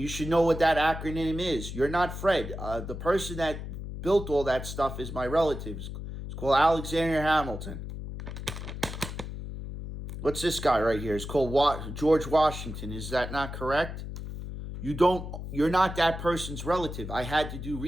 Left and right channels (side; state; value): left; noise; hum, 8 dB below the sound